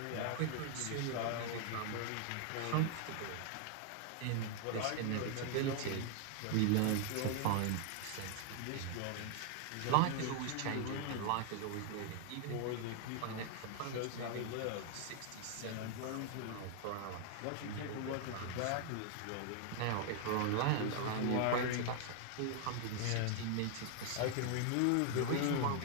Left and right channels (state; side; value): different; both; correlation 0.00